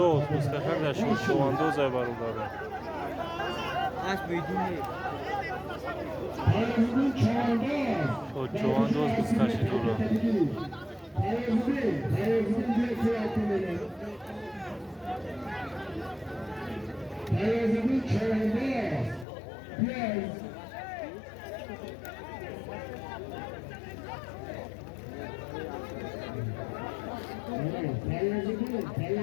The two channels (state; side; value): drops out; right; at 19.2 s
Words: بزکشان در شد چواندوز ای برادر شد چواندوز بزکشی دورا